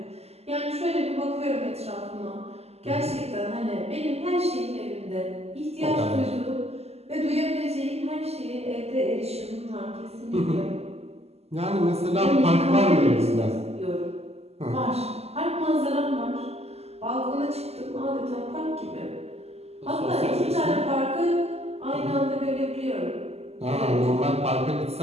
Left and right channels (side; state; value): left; late; 0.30 ms